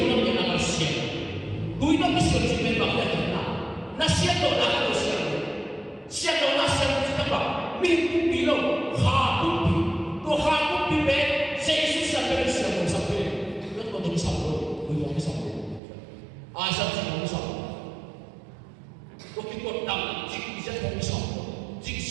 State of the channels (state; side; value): drops out; left; at 15.8 s